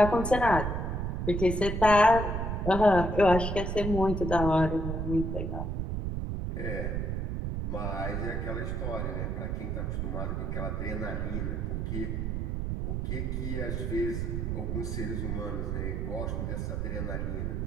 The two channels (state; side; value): noise; right; rumble, 1 dB below the sound